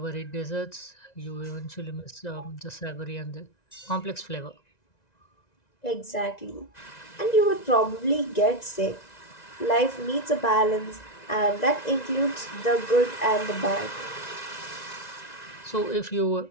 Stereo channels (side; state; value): right; late; 1.9 ms